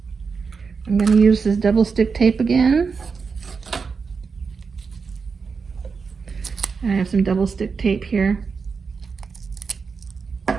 I'm going to use this double stick tape again. I have some double stick tape here.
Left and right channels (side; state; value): left; quieter; 5.2 dB